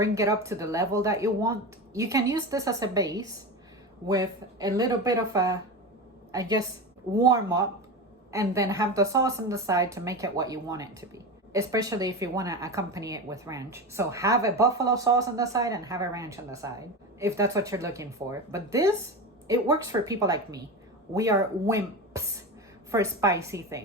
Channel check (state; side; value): normal; both; correlation 0.23